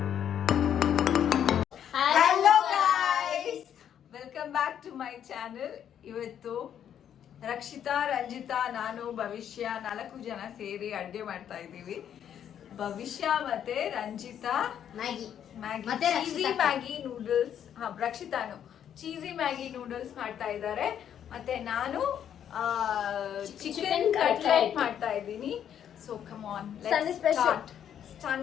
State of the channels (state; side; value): quieter; right; 9.4 dB